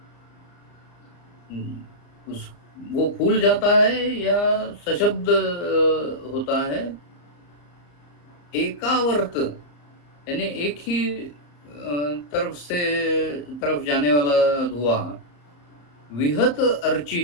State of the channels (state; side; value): late; right; 34 ms